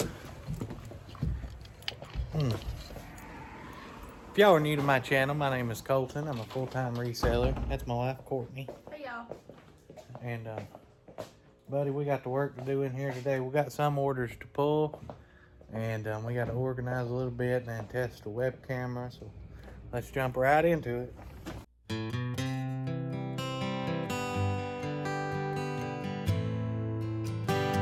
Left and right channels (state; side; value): identical; both; correlation 1.00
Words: if y'all are new to my channel, my name is Colton. I'm a full-time reseller. That's my wife, Courtney. Hey, y'all. And, buddy, we got the work to do in here today. We got some orders to pull, and we got to organize a little bit and then test the web camera. So let's jump right into it.